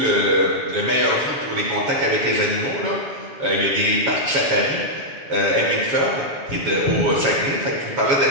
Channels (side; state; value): left; late; 7.0 ms